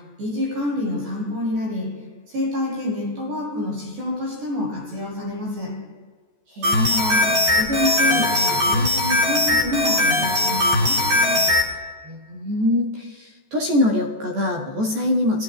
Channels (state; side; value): late; left; 14 ms